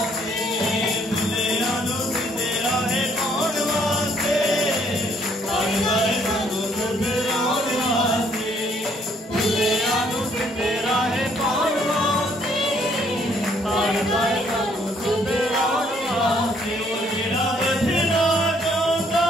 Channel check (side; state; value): both; normal; correlation 0.66